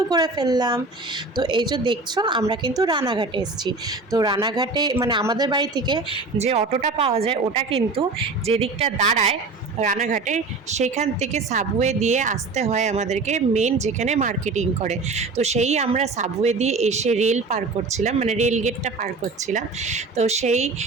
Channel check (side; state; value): left; quieter; 3.7 dB